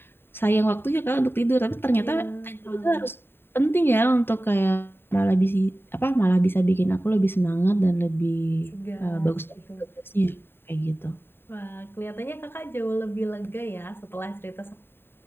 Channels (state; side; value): late; right; 0.11 ms